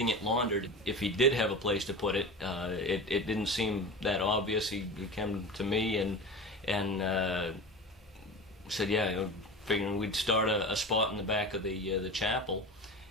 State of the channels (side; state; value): both; normal; correlation 0.30